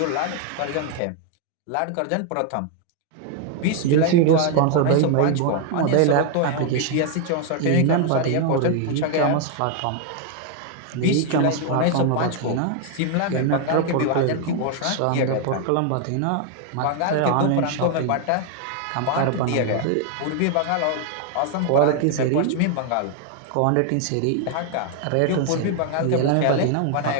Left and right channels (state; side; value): different; both; correlation 0.00